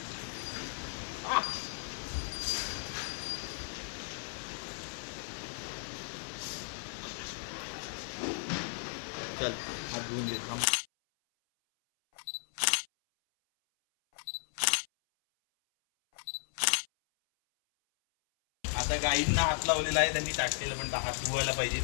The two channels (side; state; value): right; silent; 54 dB below the other